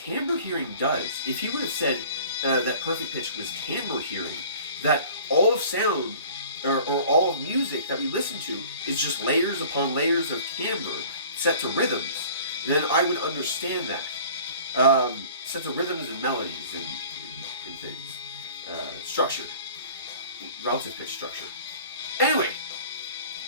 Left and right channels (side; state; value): both; inverted; correlation -0.46